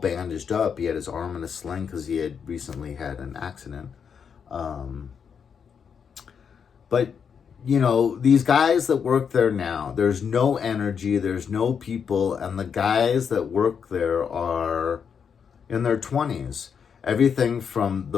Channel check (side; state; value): right; quieter; 6.9 dB